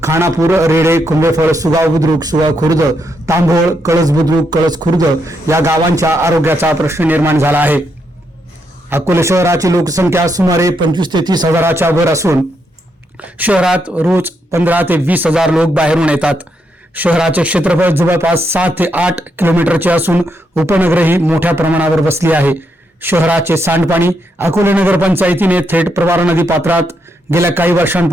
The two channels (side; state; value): both; normal; correlation 0.79